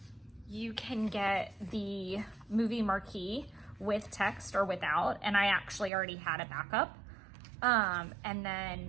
you can get the movie marquee with text or without, and I actually already had a backup. And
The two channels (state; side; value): drops out; left; at 5.9 s